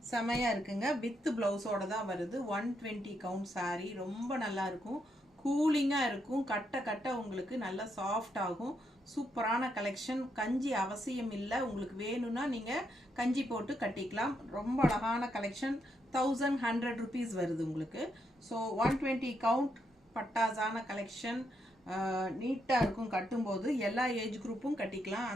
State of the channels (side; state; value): both; normal; correlation 0.79